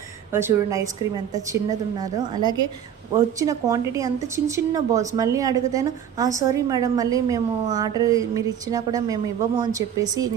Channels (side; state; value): left; quieter; 9.2 dB